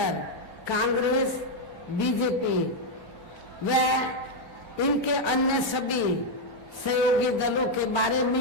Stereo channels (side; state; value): both; normal; correlation 0.01